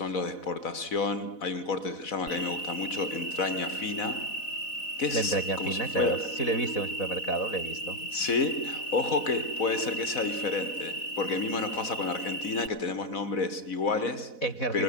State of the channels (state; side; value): late; right; 4.0 ms